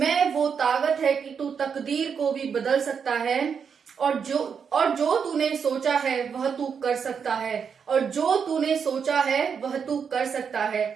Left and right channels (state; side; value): quieter; left; 6.6 dB